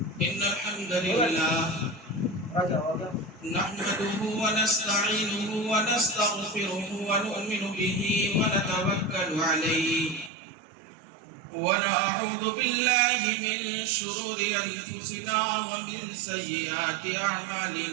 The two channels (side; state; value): left; drops out; at 10.3 s